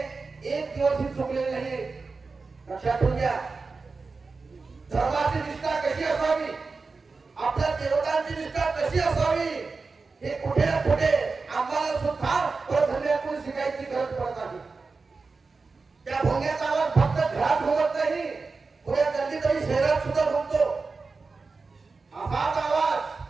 एक दिवसही चुकलेले नाही, लक्षात ठेवून घ्या। धर्माची निष्ठा कशी असावी, आपल्या देवतांची निष्ठा कशी असावी, हे कुठे ना कुठे आम्हाला सुद्धा परधर्मीयाकडून शिकायची गरज पडत आहे। त्या भोंग्याचा आवाज फक्त घरात घुमत नाही, पुऱ्या गल्लीतही शहरात सुद्धा घुमतो। असाच आवाज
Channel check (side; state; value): left; quieter; 4.2 dB